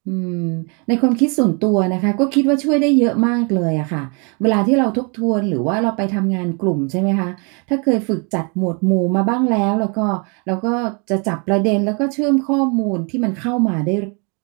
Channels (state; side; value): quieter; left; 34.6 dB